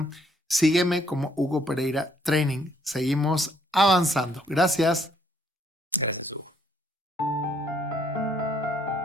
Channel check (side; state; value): both; normal; correlation 0.67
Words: sígueme como Hugo Pereira Training. Seguimos avanzando. Gracias. Gracias, Hugo.